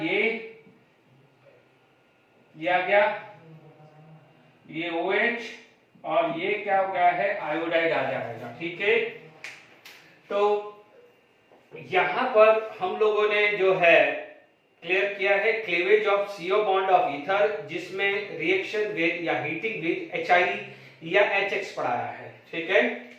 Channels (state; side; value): identical; both; correlation 1.00